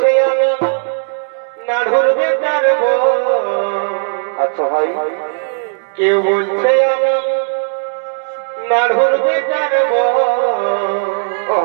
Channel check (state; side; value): silent; left; digital silence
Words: আমি নাড়ুর বেটার বউ। আচ্ছা ভাই, কেউ বলছে আমি নাড়ুর বেটার বউ।